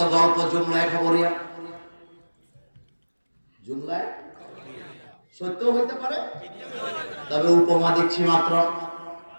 গল্প, জুমলায় খবরিয়া, জুমলায় সত্য হইতে পারে, তবে উপমা দিচ্ছি মাত্র।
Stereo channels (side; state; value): both; inverted; correlation -1.00